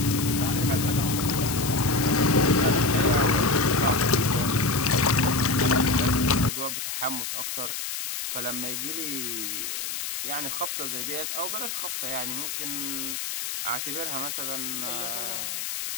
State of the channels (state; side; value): noise; left; hiss, 4 dB below the sound